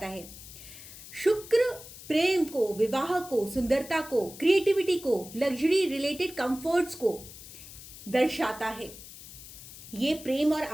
है। शुक्र प्रेम को, विवाह को, सुंदरता को, क्रिएटिविटी को, लग्जरी रिलेटेड कंफर्ट्स को दर्शाता है। ये प्रेम और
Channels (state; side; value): noise; left; hiss, 15 dB below the sound